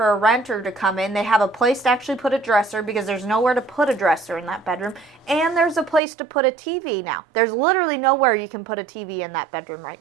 a renter to come in. They have a place to actually put a dresser because there's nowhere to put a dresser in that bedroom. And there's a place to put a TV now. There's literally nowhere you can put a TV in that bedroom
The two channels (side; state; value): left; drops out; at 6.0 s